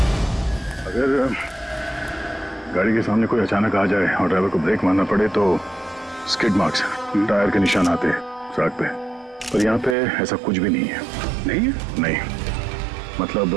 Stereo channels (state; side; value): drops out; left; at 10.0 s